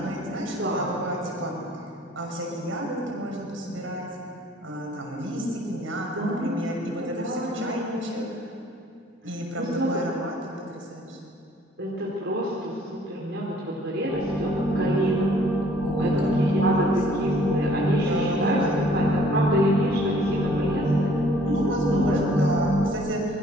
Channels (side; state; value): both; normal; correlation 0.58